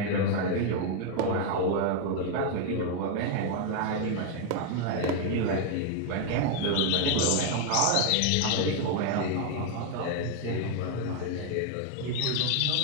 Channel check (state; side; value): different; both; correlation 0.00